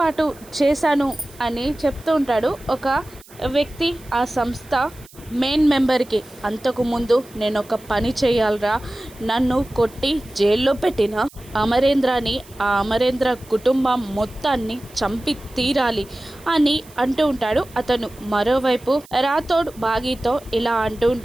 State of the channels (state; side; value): noise; right; hiss, 24 dB below the sound